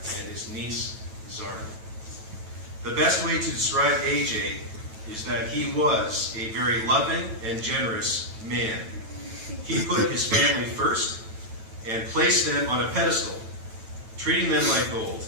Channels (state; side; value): late; left; 9.1 ms